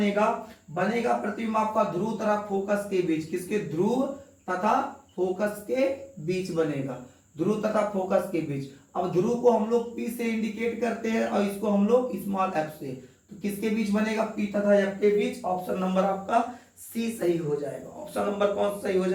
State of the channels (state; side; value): identical; both; correlation 1.00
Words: बनेगा प्रतिबिंब आपका ध्रुव तथा फोकस के बीच। किसके, ध्रुव तथा फोकस के बीच बनेगा, ध्रुव तथा फोकस के बीच। अब ध्रुव को हम लोग P से इंडिकेट करते हैं और इसको हम लोग स्मॉल f से, तो किसके बीच बनेगा, P तथा F के बीच। ऑप्शन नंबर आपका सी सही हो जाएगा। ऑप्शन नंबर कौन सही हो